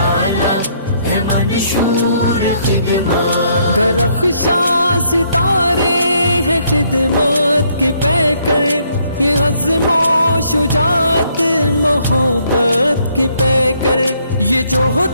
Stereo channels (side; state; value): both; inverted; correlation -0.69